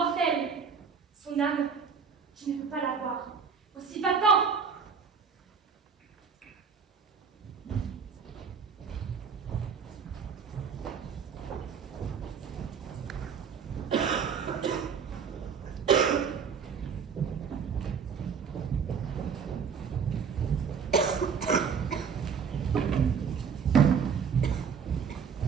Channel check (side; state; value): left; quieter; 6.4 dB